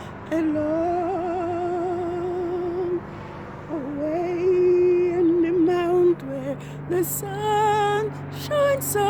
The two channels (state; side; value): identical; both; correlation 1.00